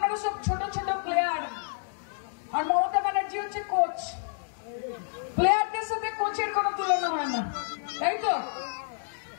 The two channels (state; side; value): silent; right; digital silence